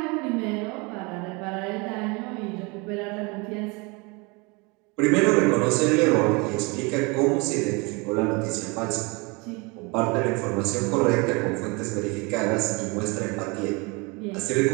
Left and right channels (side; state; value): left; quieter; 28.2 dB